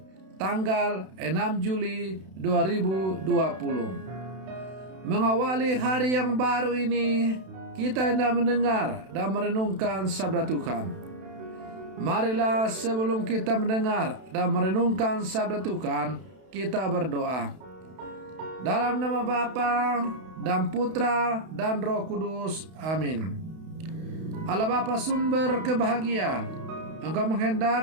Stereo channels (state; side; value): late; left; 32 ms